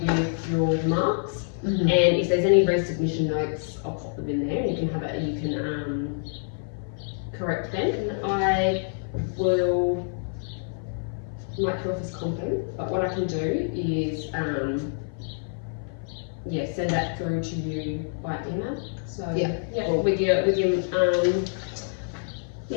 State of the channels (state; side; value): silent; right; 57 dB below the other